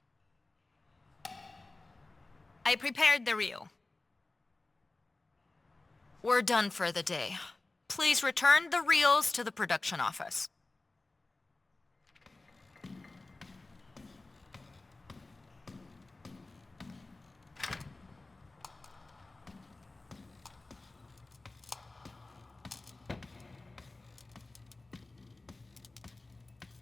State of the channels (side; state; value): right; quieter; 3.2 dB